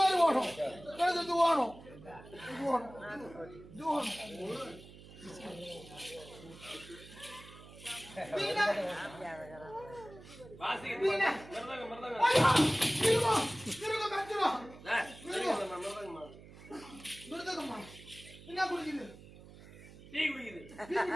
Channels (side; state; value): right; noise; hum, 18 dB below the sound